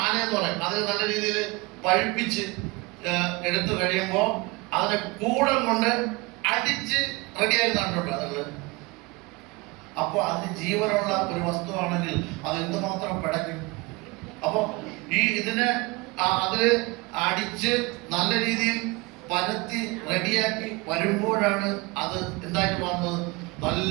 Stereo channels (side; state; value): left; quieter; 24.9 dB